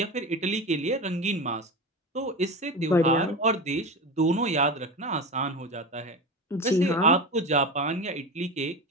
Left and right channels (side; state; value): both; normal; correlation 0.25